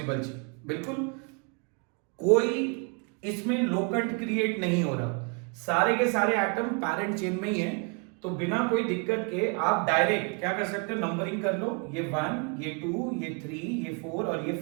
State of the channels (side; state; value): left; quieter; 35.7 dB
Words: chain. बिल्कुल, कोई इसमें लोकंट क्रिएट नहीं हो रहा, सारे के सारे एटम पैरेंट चेन में ही है। तो बिना कोई दिक्कत के आप डायरेक्ट क्या कर सकते हो, नंबरिंग कर लो। ये 1, ये 2, ये 3, ये 4 और ये